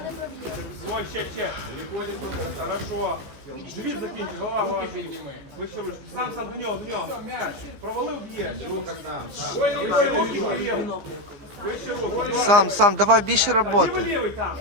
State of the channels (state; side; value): late; left; 15 ms